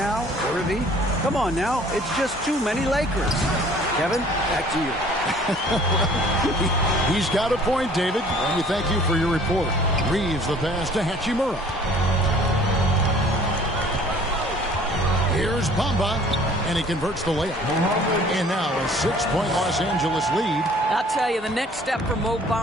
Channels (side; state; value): both; normal; correlation 0.53